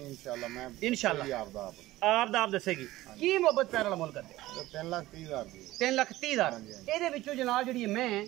ਇਨਸ਼ਾਅੱਲਾ ਮੈਂ ਇਨਸ਼ਾਅੱਲਾ ਆਪ ਦਾ ਆਪ ਦੱਸੇਗੀ। ਕੀ ਮੁਹੱਬਤ ਪਿਆਰ ਵਾਲਾ ਮੁੱਲ ਕਰਦੇ? 3,30,000 ਦੀ। 3,30,000। ਇਹਦੇ ਵਿੱਚੋਂ ਜਨਾਬ ਜਿਹੜੀ ਮੈਂ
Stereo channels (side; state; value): left; quieter; 16.9 dB